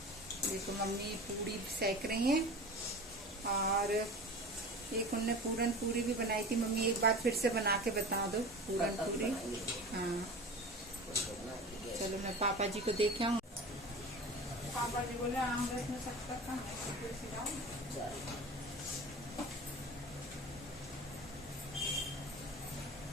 देखो मम्मी पूरी सेक रही हैं और एक उनने पूरन पूरी भी बनाई थी। मम्मी एक बार फिर से बना के बता दो पूरन पूरी। हाँ चलो मैं पापा जी को देखे आऊँ। पापा जी बोले आम रस में सकता था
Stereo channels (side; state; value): both; normal; correlation 0.34